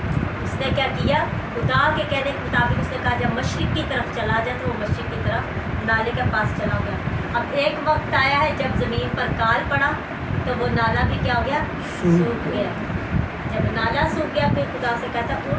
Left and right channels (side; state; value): both; identical; correlation 1.00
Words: उसने क्या किया, खुदा के कहने के मुताबिक उसने कहा जब मशरिक की तरफ चला जाए तो वो मशरिक की तरफ नाले के पास चला गया। अब एक वक्त आया है जब ज़मीन पर काल पड़ा तो वो नाला भी क्या हो गया, सूख गया। जब नाला सूख गया फिर खुदा से कहता